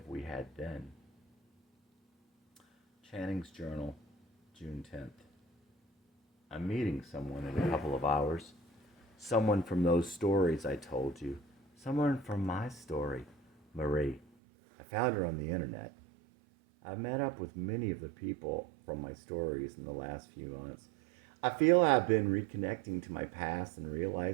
we had then. Channing's Journal, June 10th. I'm meeting someone in a couple of hours. Someone from those stories I told you. Someone from my story, Marie. I found her on the internet. I've met up with many of the people from my stories in the last few months. I feel I've been reconnecting to my past and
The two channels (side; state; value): left; drops out; at 14.2 s